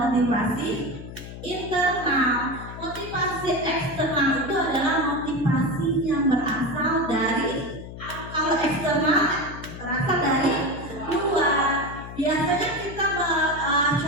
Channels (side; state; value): left; noise; hum, 12 dB below the sound